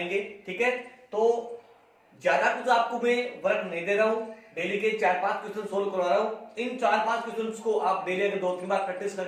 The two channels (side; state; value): both; identical; correlation 1.00